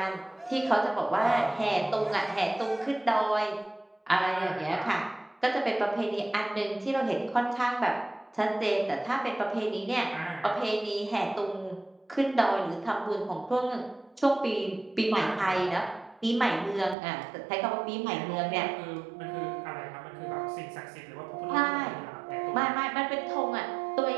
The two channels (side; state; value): left; drops out; at 16.9 s